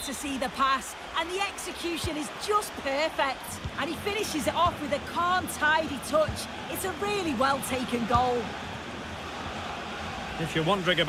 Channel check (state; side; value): identical; both; correlation 1.00